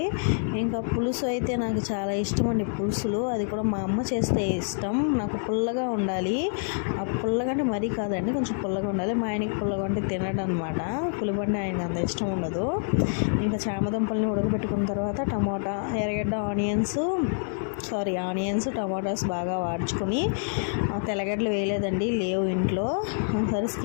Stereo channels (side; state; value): right; silent; 60 dB below the other